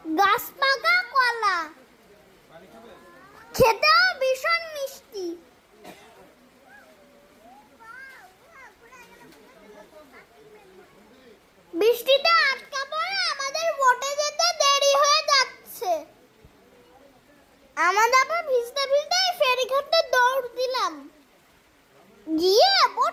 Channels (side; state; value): both; identical; correlation 1.00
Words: গাছ পাকা কলা, খেতেও ভীষণ মিষ্টি। বৃষ্টিতে আটকা পড়ে আমাদের বোটে যেতে দেরি হয়ে যাচ্ছে। আমরা আবার ভিজতে ভিজতে ফেরিঘাটে দৌড় দিলাম, গিয়ে